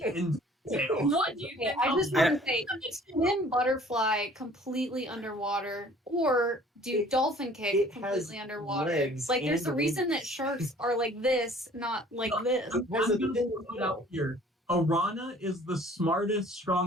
end tail. What do you think? I just want to say, swim butterfly completely underwater, or do dolphin kick completely underwater. There's a reason that sharks are like this, not like this. I'm going to put it out here. Arana is the smartest,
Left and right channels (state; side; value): normal; both; correlation 0.52